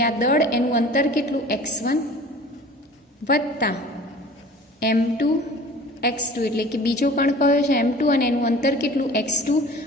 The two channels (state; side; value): normal; both; correlation 0.44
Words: આ દળ એનું અંતર કેટલું x1 વત્તા m2 x2 એટલે કે બીજો કણ કયો છે m2 અને એનું અંતર કેટલું x2